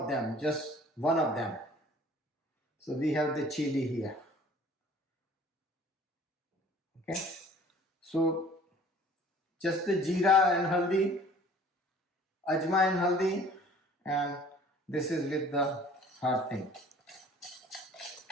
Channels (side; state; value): both; normal; correlation 0.51